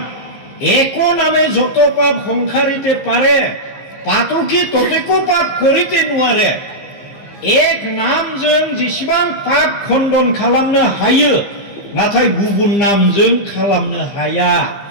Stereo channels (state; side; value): late; right; 15 ms